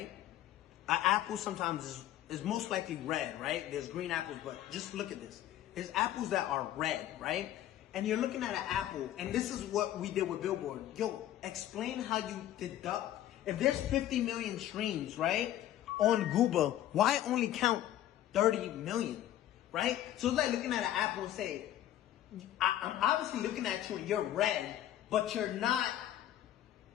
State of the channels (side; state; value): right; quieter; 12.7 dB